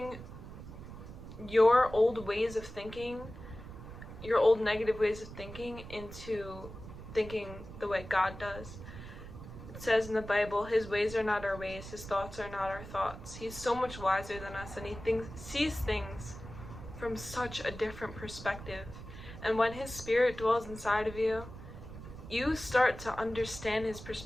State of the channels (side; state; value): right; noise; rumble, 13 dB below the sound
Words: your old ways of thinking, your old negative ways of thinking, into thinking the way God does. It says in the Bible, His ways are not our ways, His thoughts are not our thoughts. He's so much wiser than us, and He sees things from such a different perspective. And when His Spirit dwells inside of you, you start to understand His